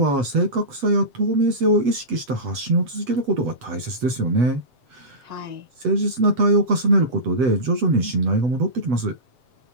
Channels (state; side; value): late; left; 8.2 ms